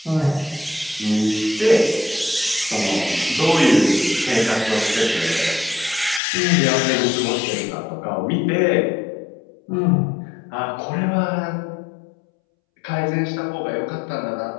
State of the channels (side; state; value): right; drops out; at 6.2 s